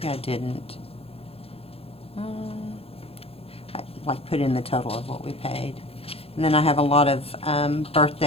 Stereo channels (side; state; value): right; late; 0.28 ms